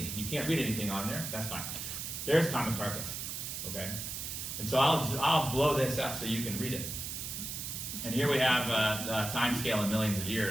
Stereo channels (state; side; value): noise; right; hiss, 5 dB below the sound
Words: You can't read anything on there, that's fine. There's Commicarpus, okay? And so I'll blow this up so you can read it. And here we have a time scale in millions of